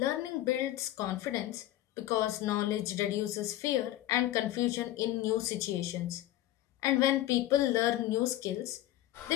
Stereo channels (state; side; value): quieter; right; 14.6 dB